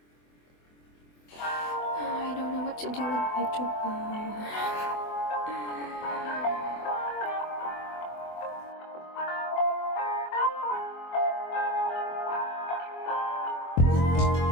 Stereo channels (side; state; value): right; late; 24 ms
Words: I don't know what to do with my job.